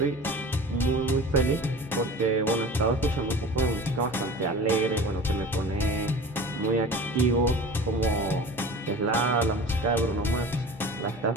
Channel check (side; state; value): both; normal; correlation 0.38